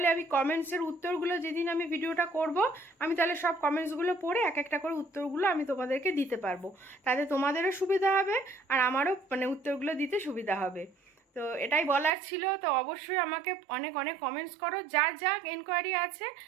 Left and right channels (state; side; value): drops out; left; at 12.1 s